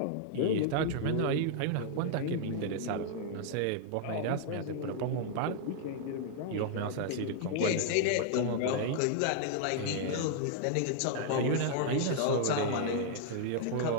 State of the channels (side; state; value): both; different; correlation -0.01